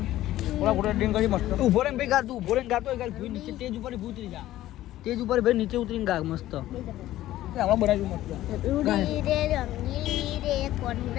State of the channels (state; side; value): quieter; right; 14.6 dB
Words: ઓલા ફોટો એડિટિંગ કરી મસ્ત. ઉભો રે ભાઈ, ગાતું ઉભો રે ગાતો ગાલ ભૂઈ નીચે સ્ટેજ ઉપર ઉતરી જા. સ્ટેજ ઉપર ભાઈ નીચે ઉતરીને ગા મસ્ત. હમણાં બનાવ્યું મસ્ત. રૂડી રે રંગીલી રે